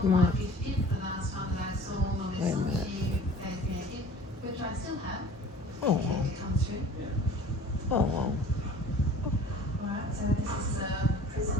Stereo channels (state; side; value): normal; both; correlation 0.45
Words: on it. Wait a minute. Oh, oh,